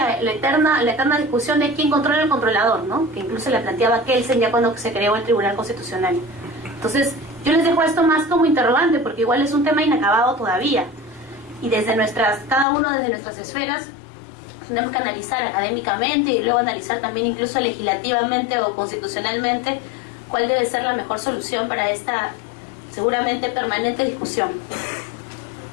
eterna discusión de quién controla al controlador, ¿no? Que incluso la planteaba Kelsen ya cuando se creó el Tribunal Constitucional. Entonces, yo les dejo esto más como interrogante, porque igual es un tema inacabado todavía. Y desde cada uno desde nuestras esferas, tenemos que analizar académicamente y luego analizar también incluso legislativamente o constitucionalmente cuál debe ser la mejor solución para esta seguramente permanente discusión.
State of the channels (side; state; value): right; drops out; at 12.7 s